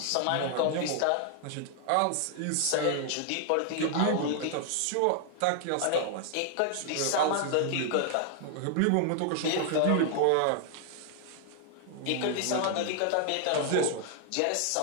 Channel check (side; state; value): both; different; correlation 0.00